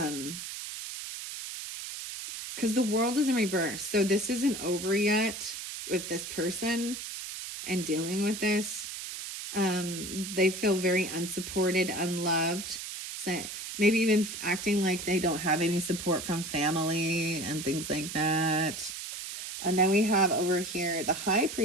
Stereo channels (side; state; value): right; noise; hiss, 8 dB below the sound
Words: the World is in reverse. So this isn't over yet with this person and dealing with this. They feel very unsupported, unloved. So maybe even acting like they don't have any support from family and things like that. And then we have over here the High